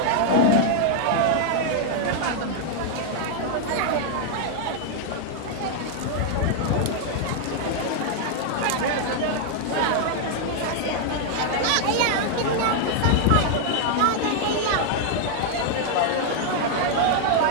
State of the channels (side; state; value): both; different; correlation 0.00